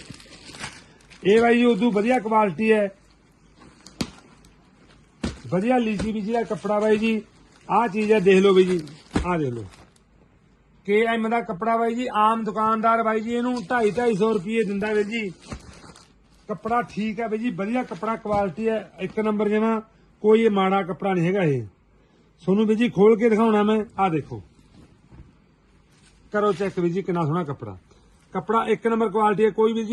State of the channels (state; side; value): identical; both; correlation 1.00